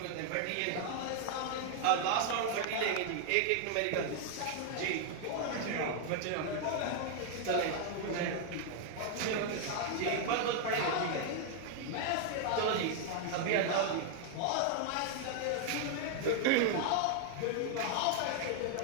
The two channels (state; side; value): different; both; correlation 0.00